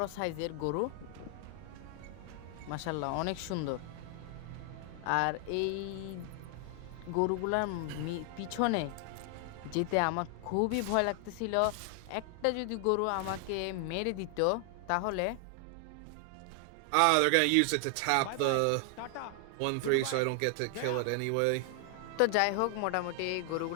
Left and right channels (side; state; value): both; different; correlation 0.00